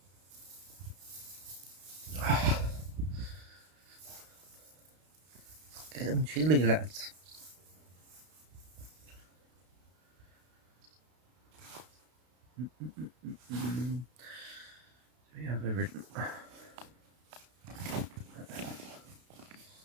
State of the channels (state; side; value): late; left; 32 ms